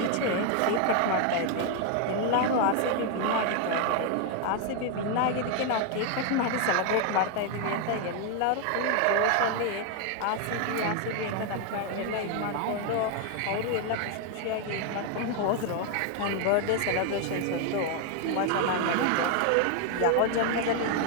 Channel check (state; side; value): different; both; correlation 0.01